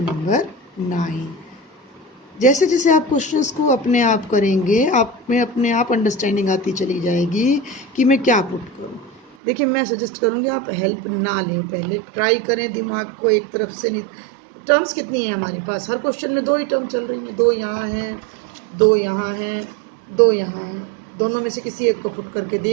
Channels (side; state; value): left; drops out; at 9.3 s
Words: number 9। जैसे जैसे आप क्वेश्चंस को अपने आप करेंगे, आप में अपने आप अंडरस्टैंडिंग आती चली जाएगी कि मैं क्या पुट करूं। देखिए मैं सजेस्ट करूंगी आप हेल्प ना लें, पहले ट्राई करें दिमाग को एक तरफ से। नहीं, टर्म्स कितनी है हमारे पास, हर क्वेश्चन में 2 ही टर्म चल रही हैं, 2 यहाँ हैं, 2 यहाँ हैं, 2 यहाँ हैं, दोनों में से किसी एक को पुट करके